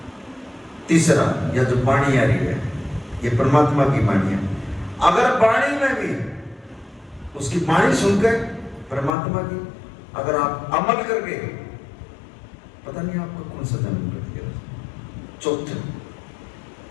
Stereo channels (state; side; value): drops out; right; at 9.2 s